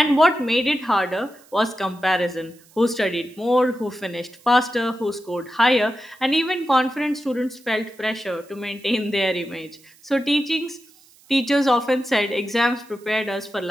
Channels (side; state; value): right; noise; hiss, 28 dB below the sound